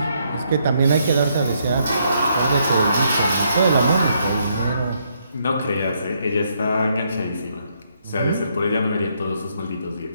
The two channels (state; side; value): inverted; both; correlation -0.74